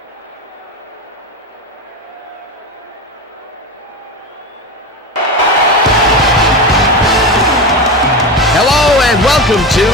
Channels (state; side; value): normal; both; correlation 0.22